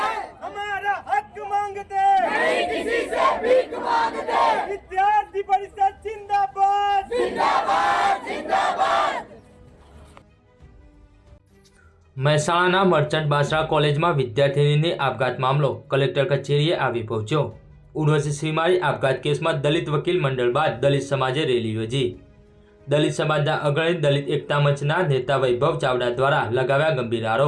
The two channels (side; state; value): both; identical; correlation 1.00